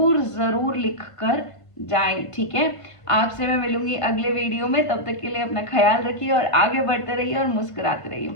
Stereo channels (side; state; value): right; late; 1.5 ms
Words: लिख कर जाएं, ठीक है। आपसे मैं मिलूंगी अगले वीडियो में, तब तक के लिए अपना ख्याल रखिए और आगे बढ़ते रहिए और मुस्कुराते रहिए।